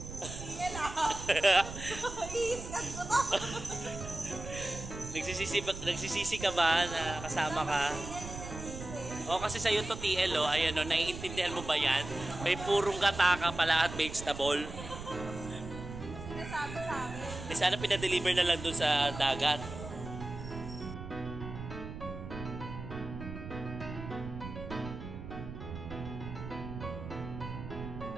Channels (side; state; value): right; noise; rumble, 10 dB below the sound